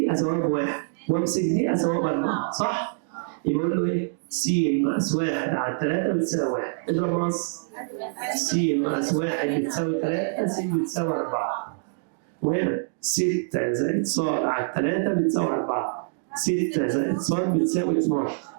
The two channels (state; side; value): silent; left; digital silence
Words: اساويها بواحد وامسك دي اساويها باربعه، صح؟ يبقى اقول له ايه؟ س ناقص 1 على 3 بتساوي 1. اضرب نص. س ناقص 1 بتساوي 3. س بتساوي 4. وهنا 6 زائد ص على 3 بتساوي 4. 6 زائد ص بتساوي 12.